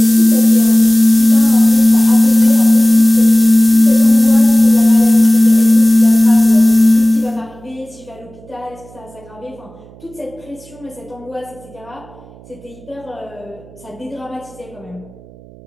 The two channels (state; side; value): noise; right; hum, 24 dB below the sound